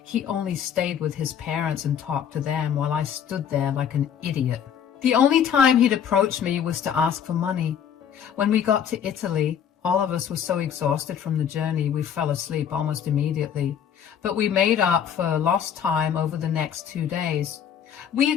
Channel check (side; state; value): right; quieter; 8.5 dB